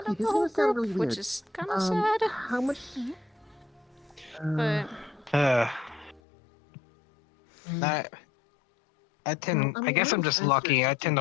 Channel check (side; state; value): right; drops out; at 6.2 s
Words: of the this whole is gonna sound group, really which weird. is kind of sad. How much? But I tend. I guess I'm just lucky. I tend